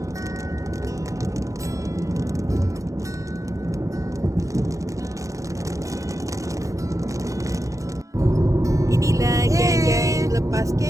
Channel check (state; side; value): late; left; 0.16 ms